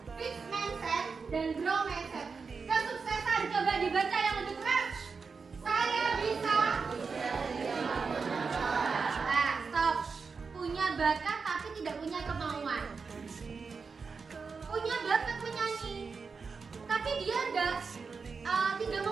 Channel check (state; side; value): quieter; left; 5.0 dB